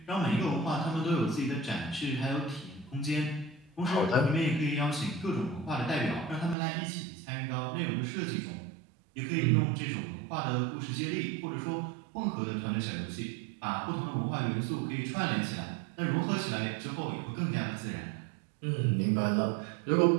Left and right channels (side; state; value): left; drops out; at 6.6 s